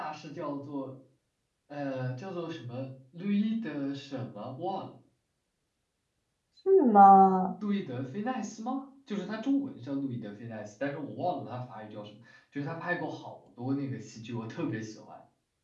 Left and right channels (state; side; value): identical; both; correlation 1.00